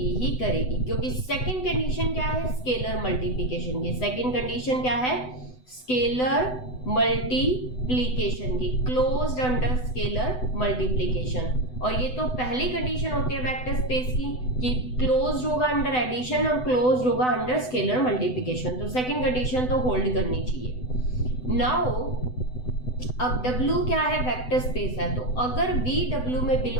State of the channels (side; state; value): right; late; 7.9 ms